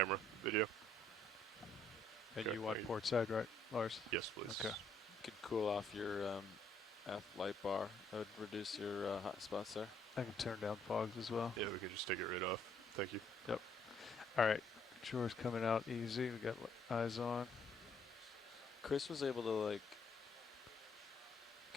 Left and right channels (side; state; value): both; normal; correlation 0.67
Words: video. And Okay. you want port side, right, Lars? Yes, please. Okay. You could cool off your F light bar. That would reduce your hot spots there. I can turn down fogs as well. Yeah, we can just take it right off. Thank you. Yep. All right. Drawer's coming out easy. We got eyes on. Chris was able to like